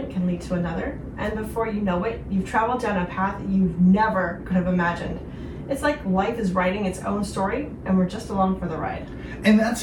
can lead to another, and before you know it, you've traveled down a path you never could have imagined. It's like life is writing its own story, and we're just along for the ride. And that's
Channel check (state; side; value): identical; both; correlation 1.00